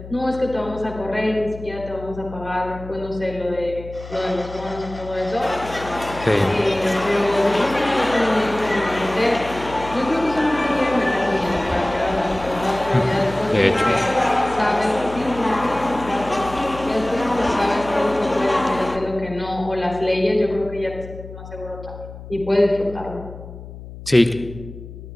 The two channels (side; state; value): left; noise; hum, 14 dB below the sound